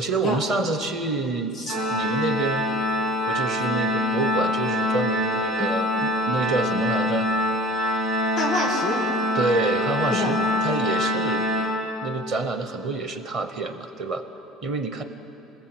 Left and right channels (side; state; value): both; normal; correlation 0.44